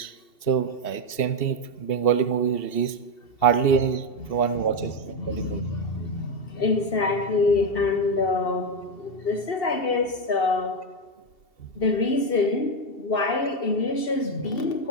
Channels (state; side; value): late; right; 2.7 ms